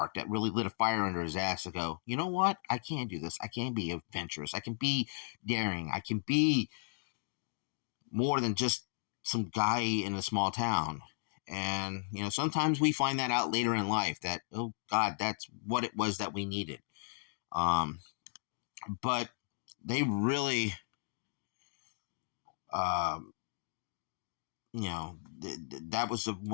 that really lit a fire under his ass to go, you know what? I can do this. I can be adventurous. I can be daring. I can be more than just some guy in a small town. And, sometimes we find that out later in life that, oh God, that's what it was that we needed. But they really, that was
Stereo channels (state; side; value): silent; right; digital silence